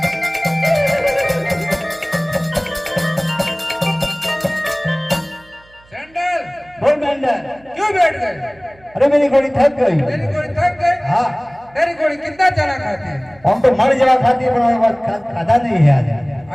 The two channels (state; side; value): noise; right; hum, 28 dB below the sound